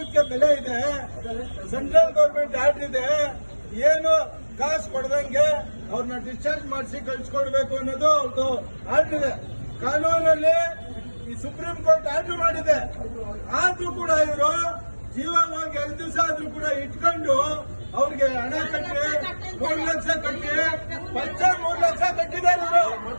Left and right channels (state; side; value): inverted; both; correlation -1.00